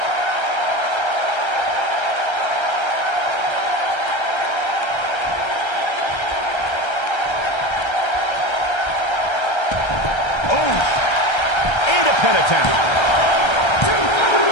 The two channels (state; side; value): late; right; 1.3 ms